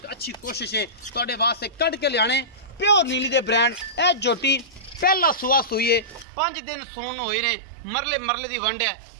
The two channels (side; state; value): left; drops out; at 6.2 s